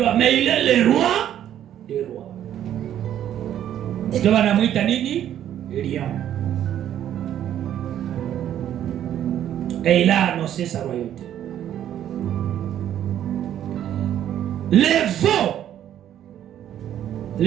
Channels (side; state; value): left; quieter; 10.9 dB